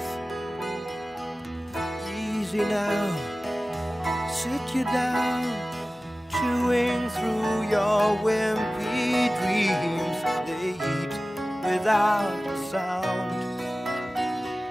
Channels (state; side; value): normal; both; correlation 0.97